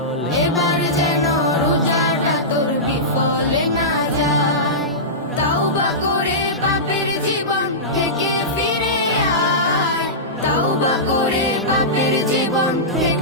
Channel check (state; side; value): normal; both; correlation -0.16